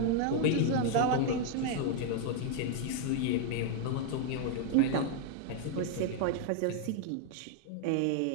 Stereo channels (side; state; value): both; different; correlation 0.00